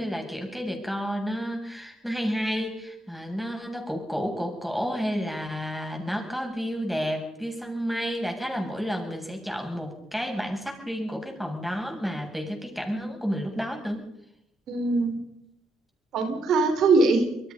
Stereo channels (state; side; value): normal; both; correlation 0.81